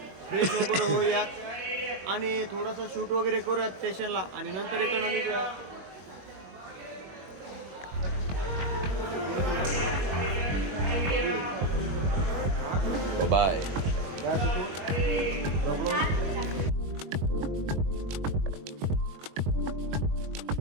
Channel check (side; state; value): left; late; 21 ms